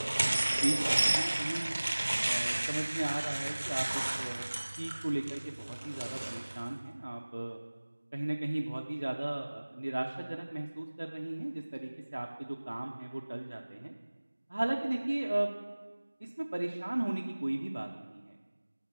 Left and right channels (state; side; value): inverted; both; correlation -1.00